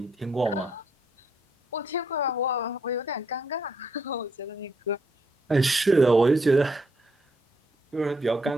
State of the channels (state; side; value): normal; both; correlation 0.73